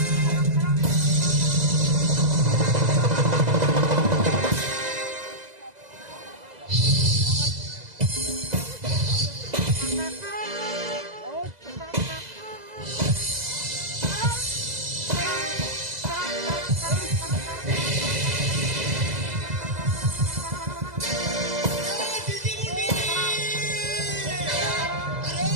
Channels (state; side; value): late; left; 2.0 ms